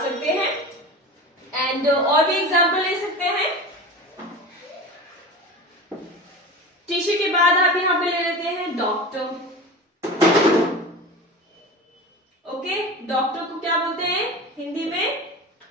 सकते हैं, एंड और भी एग्जाम्पल ले सकते हैं। टीचर के बाद आप यहाँ पे ले लेते हैं डॉक्टर। ओके, डॉक्टर को क्या बोलते हैं हिंदी में?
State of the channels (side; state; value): both; normal; correlation 0.31